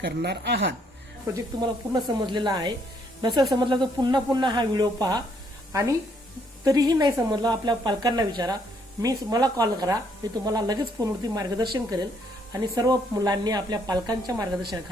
आहात. प्रोजेक्ट तुम्हाला पूर्ण समजलेला आहे. नसेल समजला तर पुन्हा हा व्हिडिओ पहा आणि तरीही नाही समजलं आपल्या पालकांना विचारा, मला कॉल करा. मी तुम्हाला लगेच फोनवरती मार्गदर्शन करेल आणि सर्व मुलांनी आपल्या पालकांच्या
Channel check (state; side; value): normal; both; correlation 0.69